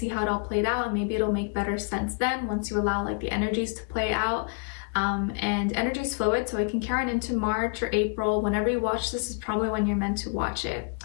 how it all played out, and maybe it'll make better sense then once you allow like the energies to play out. And energy is fluid, so it can carry on into March or April. Whenever you watch this is probably when you're meant to watch it,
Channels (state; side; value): quieter; right; 37.8 dB